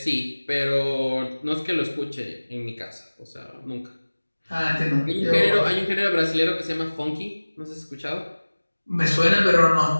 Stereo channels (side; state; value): both; inverted; correlation -1.00